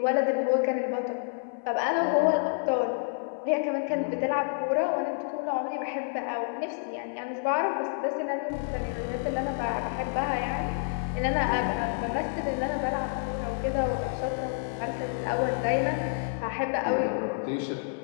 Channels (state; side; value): silent; right; 59 dB below the other